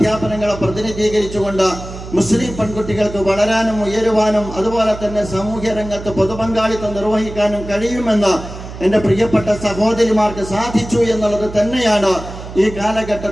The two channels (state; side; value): noise; right; hum, 12 dB below the sound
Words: പ്രതിനിധീകരിച്ചുകൊണ്ട് മുസ്ലിം പെൺകുട്ടികൾക്ക് വളരാനും ഉയരുവാനും അതുപോലെ തന്നെ സാമൂഹ്യ രംഗത്ത് പൊതുപങ്കാളിത്തം നിർവഹിക്കാനും കഴിയുമെന്ന് എൻ്റെ പ്രിയപ്പെട്ട സഹോദരിമാർക്ക് സാധിച്ചു എന്നുള്ളത് തന്നെയാണ് ഈ